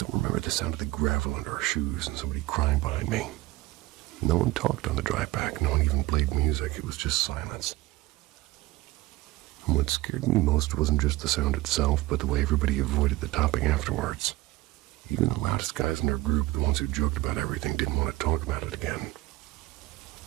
remember the sound of the gravel under our shoes and somebody crying behind me. No one talked on the drive back, no one even played music, it was just silence. And what scared me most wasn't just the sound itself, but the way everybody avoided the topic afterwards. Even the loudest guys in our group, the ones who joked about everything, didn't want to talk about it again.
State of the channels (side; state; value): left; quieter; 18.5 dB